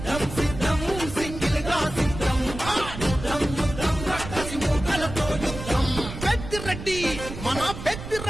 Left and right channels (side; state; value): right; noise; rumble, 9 dB below the sound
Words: సిద్ధం సింగిల్ గా సిద్ధం, యుద్ధం యుద్ధం రక్కసి మూకలతో యుద్ధం. పెద్దిరెడ్డి మన